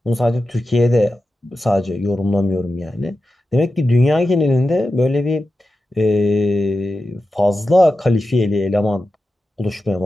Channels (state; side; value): normal; both; correlation 0.91